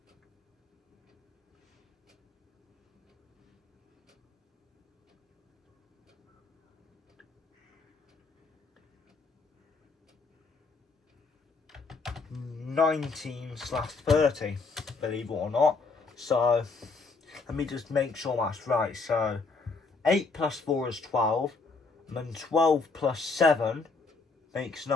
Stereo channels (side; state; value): right; quieter; 4.1 dB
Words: 19/30, believe it or not. So let me just make sure that's right. So 8 plus 4 is 12, and then 12 plus 7 makes